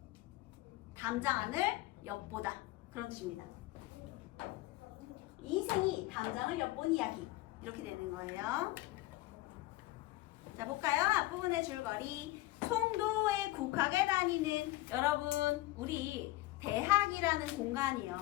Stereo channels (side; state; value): right; quieter; 18.6 dB